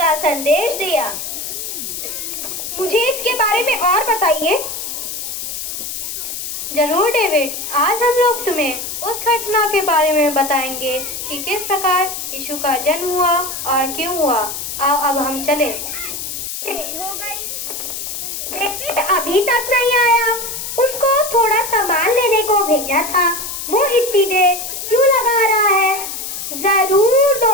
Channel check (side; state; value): left; noise; hiss, 6 dB below the sound